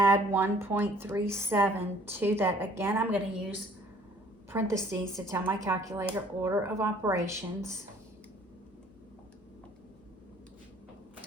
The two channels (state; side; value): normal; both; correlation 0.56